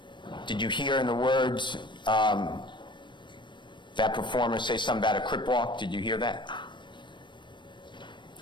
Did you hear in the words that performer say something about a crip walk? Did you hear that?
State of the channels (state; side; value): late; right; 0.22 ms